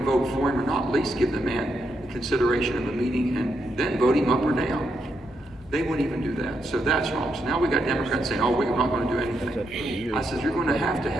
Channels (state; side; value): normal; both; correlation 0.81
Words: for him or not, at least give the man the consideration of a meeting and then vote him up or down. They wouldn't even do that. So that's wrong. So now we got Democrats saying, oh, we're not going to do anything. I said, you're going to have